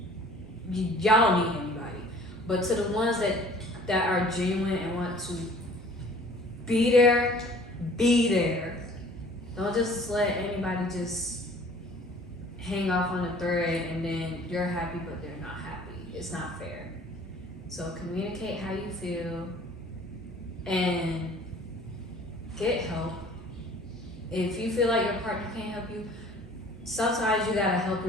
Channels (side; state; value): both; normal; correlation 0.51